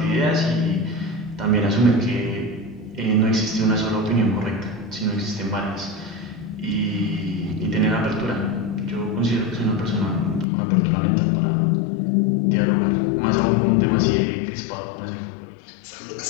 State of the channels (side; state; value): right; drops out; at 10.5 s